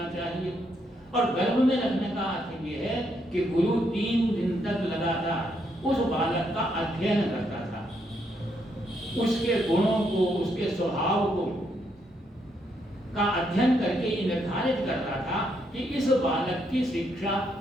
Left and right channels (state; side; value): normal; both; correlation 0.76